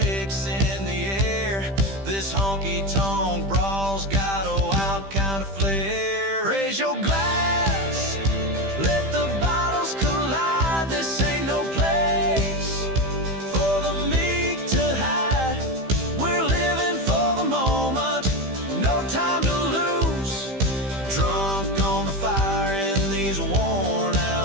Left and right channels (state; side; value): late; left; 15 ms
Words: in the air. This honky-tonk brawl's got a wild kind of flair. Raise your glass, let the bottles collide. This ain't no place for the meek to hide. We're living for the moment, no time to lose. Drunk on the fire in these worn